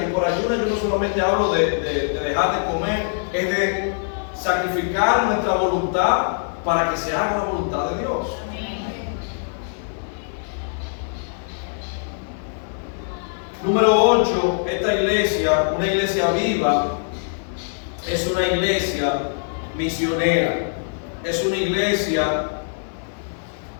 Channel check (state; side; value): silent; right; 64 dB below the other